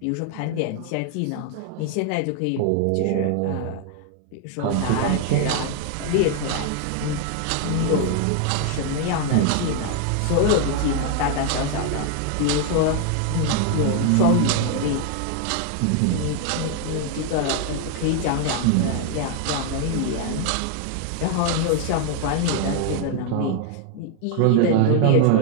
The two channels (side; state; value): both; different; correlation 0.00